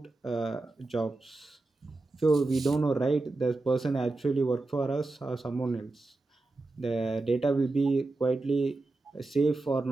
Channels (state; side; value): quieter; left; 3.2 dB